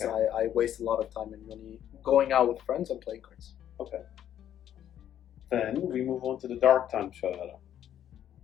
Okay. I waste a lot of time in uni going out with friends and playing cards. Okay. Then we move on to the dark time, Sharara.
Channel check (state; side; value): quieter; right; 10.6 dB